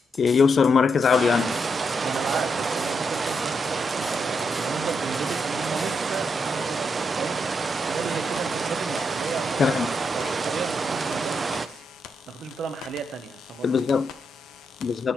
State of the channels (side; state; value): both; normal; correlation 0.81